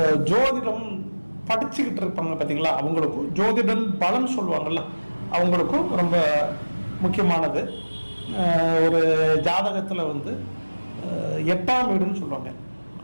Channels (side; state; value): both; inverted; correlation -1.00